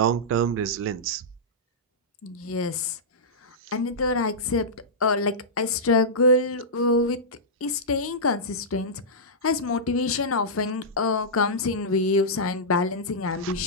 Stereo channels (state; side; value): normal; both; correlation -0.13